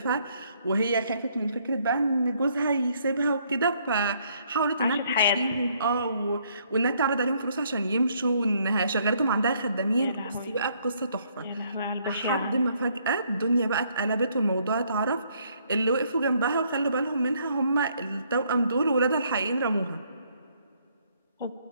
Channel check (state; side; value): inverted; both; correlation -0.68